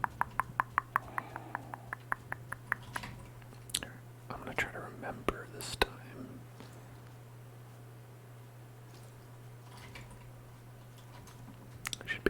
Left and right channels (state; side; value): identical; both; correlation 1.00